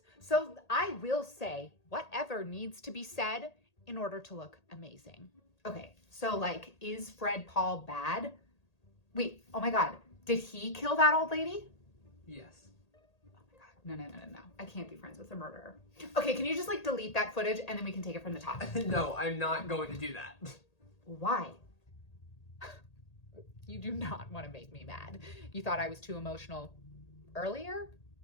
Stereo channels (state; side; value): late; right; 1.8 ms